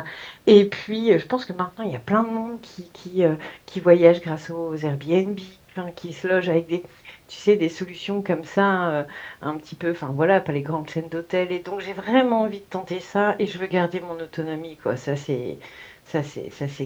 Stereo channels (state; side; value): identical; both; correlation 1.00